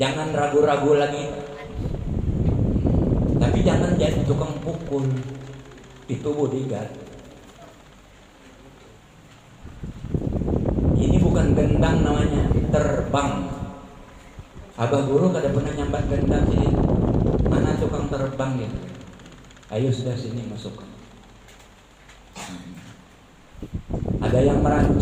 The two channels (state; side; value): identical; both; correlation 1.00